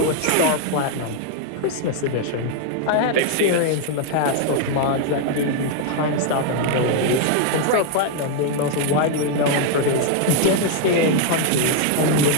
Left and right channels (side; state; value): both; different; correlation 0.00